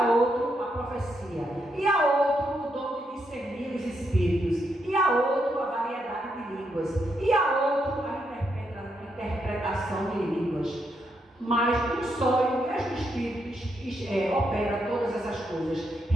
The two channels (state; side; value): normal; both; correlation 0.79